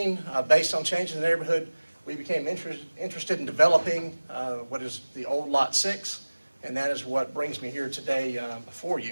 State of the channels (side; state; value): both; inverted; correlation -1.00